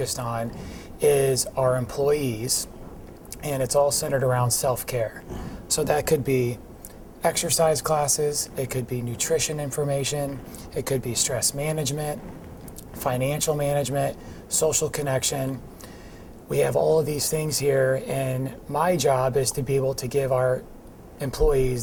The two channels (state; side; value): identical; both; correlation 1.00